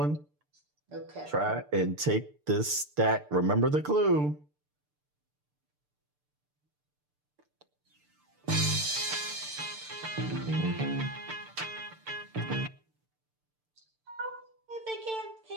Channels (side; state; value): left; late; 6.7 ms